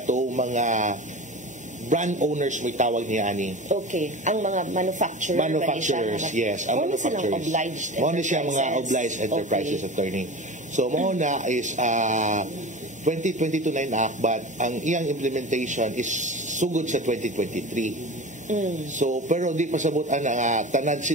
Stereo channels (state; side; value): normal; both; correlation 0.32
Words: mga brand owners may tawag niya ani. Okay. Ang mga manufacturers, yes. Ang manufacturers. Muna siya mga obliged enterprises attorney. So mo na is 2022 na enact but ang iyang implementation is sugod sa 2023. So pero di pasabot ana tanan